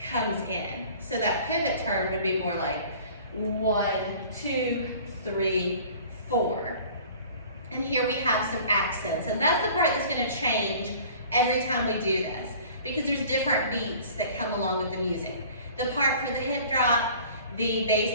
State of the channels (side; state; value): both; inverted; correlation -0.47